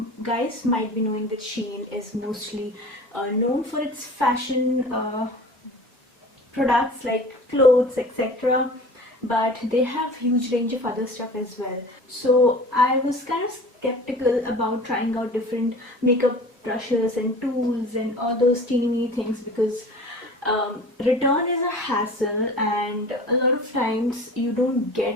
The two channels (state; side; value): normal; both; correlation 0.41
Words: guys might be knowing that SHEIN is mostly known for its fashion products like clothes, etc. But they have huge range of other stuff as well. So I was kind of skeptical about trying out different makeup brushes and tools and all those teeny things because return is a hassle, and a lot of times you don't